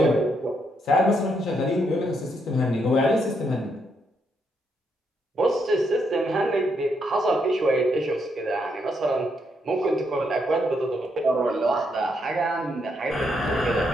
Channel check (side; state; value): both; normal; correlation 0.77